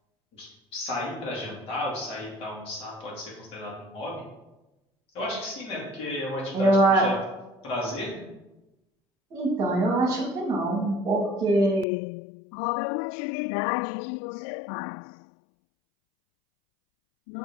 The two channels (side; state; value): right; drops out; at 11.9 s